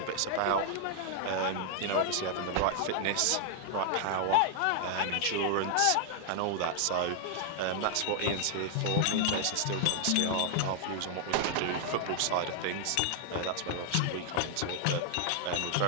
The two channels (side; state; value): both; different; correlation 0.00